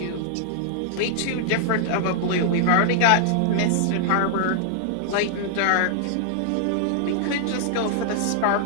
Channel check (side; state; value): both; different; correlation -0.01